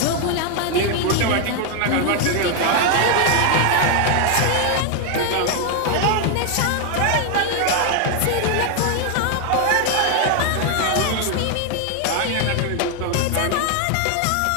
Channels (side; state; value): both; different; correlation 0.01